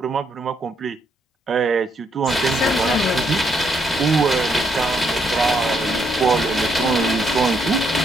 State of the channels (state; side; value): normal; both; correlation 0.74